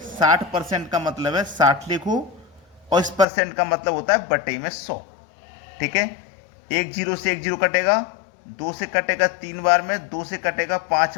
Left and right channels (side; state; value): right; drops out; at 3.2 s